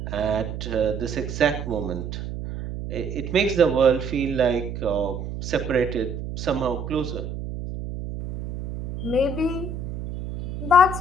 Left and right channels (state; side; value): noise; right; hum, 7 dB below the sound